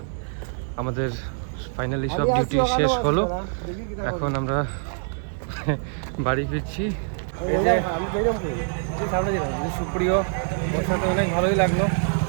আমাদের ফাইনালি সব ডিউটি শেষ হলো। এখন আমরা বাড়ি ফিরছি। সুপ্রিয়, ওর সাথে অনেক ভালোই লাগলো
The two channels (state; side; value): silent; left; 62 dB below the other